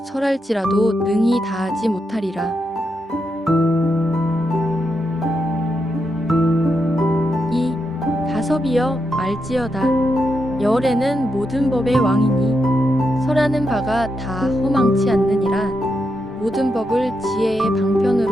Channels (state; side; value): normal; both; correlation 0.84